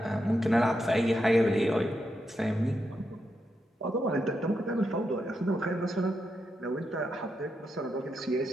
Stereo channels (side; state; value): both; normal; correlation 0.84